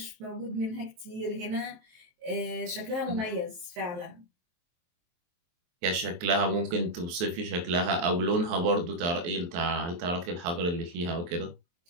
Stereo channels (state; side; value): late; left; 23 ms